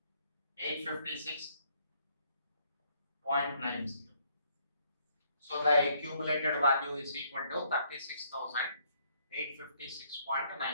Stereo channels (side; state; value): both; inverted; correlation -0.68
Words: So the accumulated value is equal to